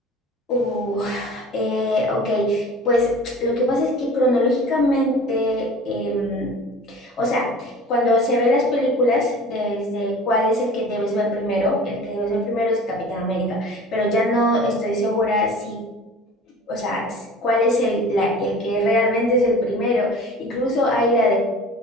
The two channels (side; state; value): both; normal; correlation 0.42